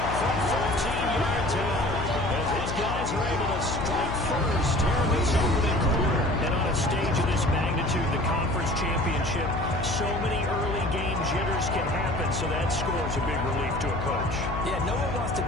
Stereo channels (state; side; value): noise; left; hum, 5 dB below the sound